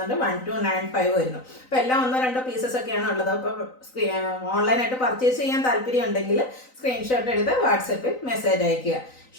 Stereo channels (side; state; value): right; late; 3.9 ms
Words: 1295 വരുന്നു. അപ്പോൾ എല്ലാം 1-2 പീസസ് ഒക്കെയാണ് ഉള്ളത്. അപ്പോൾ ഓൺലൈനായിട്ട് പർച്ചേസ് ചെയ്യാൻ താല്പര്യം ഉണ്ടെങ്കിൽ സ്ക്രീൻഷോട്ട് എടുത്ത് വാട്സപ്പിൽ മെസ്സേജ് അയയ്ക്കുക.